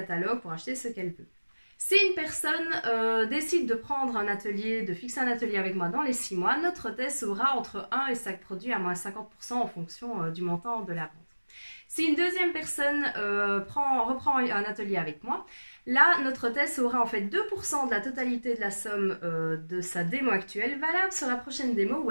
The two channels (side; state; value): both; inverted; correlation -1.00